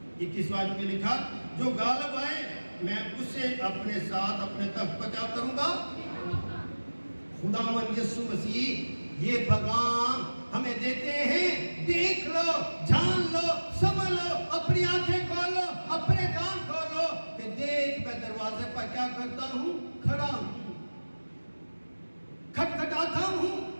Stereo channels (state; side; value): inverted; both; correlation -1.00